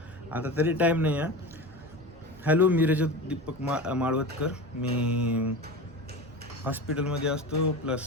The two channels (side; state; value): both; normal; correlation 0.29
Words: आता तरी टाईम नाही आहे. हॅलो, मी रजत दीपक माळवतकर. मी हॉस्पिटलमध्ये असतो,